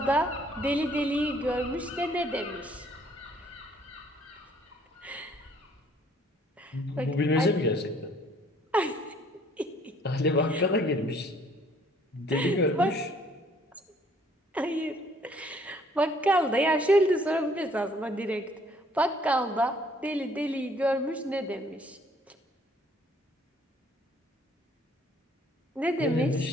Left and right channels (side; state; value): both; normal; correlation 0.61